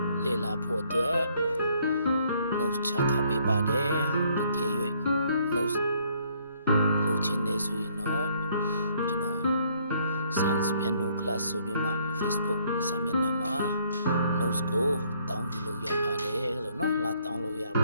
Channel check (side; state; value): both; inverted; correlation -0.66